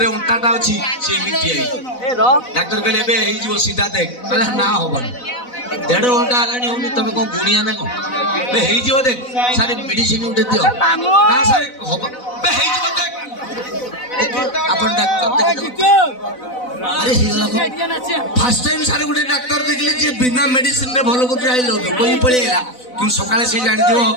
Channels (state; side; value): late; right; 4.0 ms